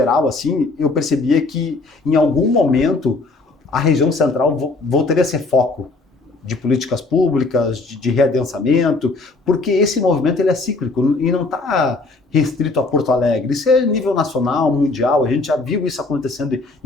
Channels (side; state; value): right; quieter; 3.6 dB